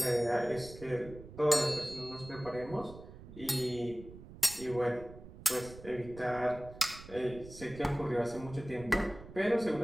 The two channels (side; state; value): right; noise; rumble, 16 dB below the sound